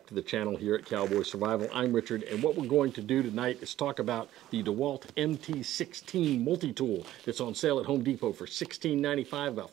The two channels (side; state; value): left; quieter; 13.9 dB